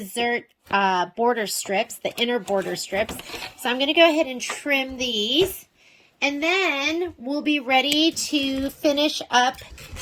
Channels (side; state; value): both; identical; correlation 1.00